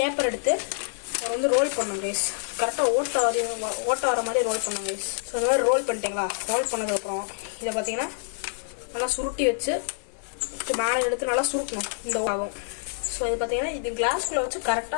எடுத்து அதை வந்து ரோல் பண்ணோம் கைஸ். கரெக்டாக ஓட்ட வர மாதிரி ரோல் பண்ணோம் கைஸ். ஸோ இந்த மாதிரி ரோல் பண்ணிட்டீங்களா? ரோல் பண்ணதுக்கப்புறம் இதை பார்த்தீங்கன்னா நல்லா சுருட்டி வச்சு மேலே எடுத்து நல்லா சுருட்டணும். இந்த ஆகும். ஸோ இது பார்த்தீங்கன்னா இது கிளாஸ்குள்ளே வச்சு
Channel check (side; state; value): right; silent; digital silence